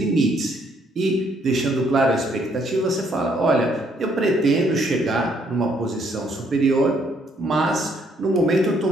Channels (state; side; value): normal; both; correlation 0.69